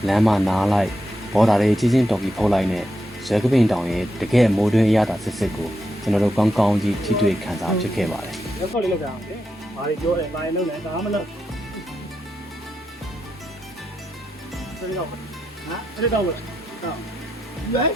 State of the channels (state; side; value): normal; both; correlation 0.85